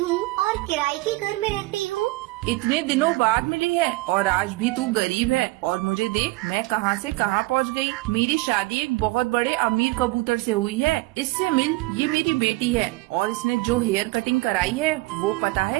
और किराए के घर में रहती हूँ। इतने दिनों बाद मिली है और आज भी तू गरीब है। और मुझे देख, मैं कहाँ से कहाँ पहुँच गई। मेरी शादी एक बहुत बड़े अमीर कबूतर से हुई है। इससे मिल, ये मेरी बेटी है। और इसने जो हेयर कटिंग कराई है वो पता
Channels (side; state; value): left; quieter; 22.0 dB